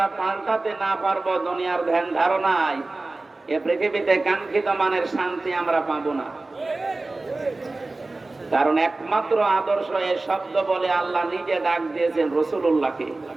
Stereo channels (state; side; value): quieter; left; 3.2 dB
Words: পাল্টাতে না পারবো দুনিয়ার ধ্যান ধারণায়, এ পৃথিবীতে কাঙ্ক্ষিত মানের শান্তি আমরা পাবো না। কারণ একমাত্র আদর্শ এ শব্দ বলে আল্লাহ নিজে ডাক দিয়েছেন রাসূলুল্লাহকে।